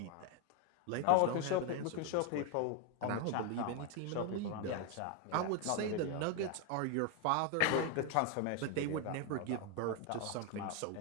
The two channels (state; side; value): different; both; correlation 0.01